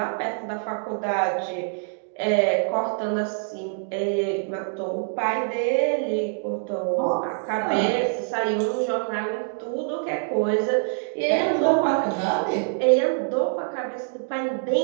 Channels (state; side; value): silent; left; digital silence